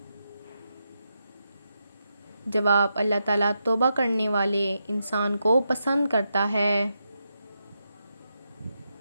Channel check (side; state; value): both; inverted; correlation -0.85